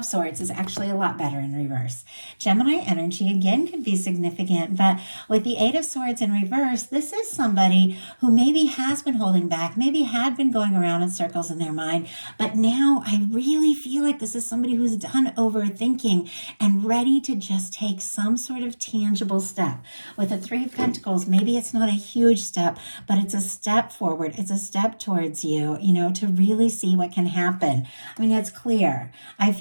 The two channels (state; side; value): inverted; both; correlation -1.00